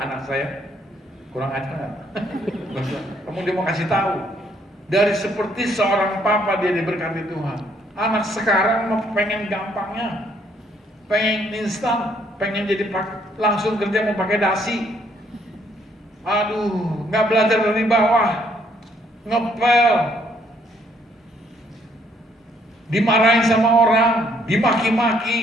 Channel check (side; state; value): both; normal; correlation 0.67